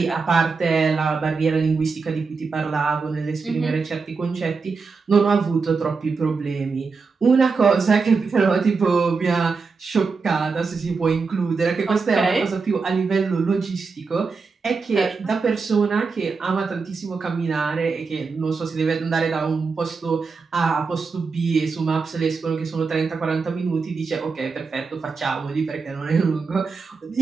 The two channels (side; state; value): left; quieter; 4.7 dB